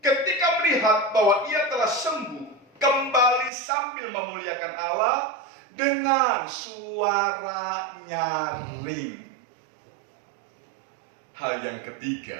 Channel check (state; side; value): drops out; left; at 3.5 s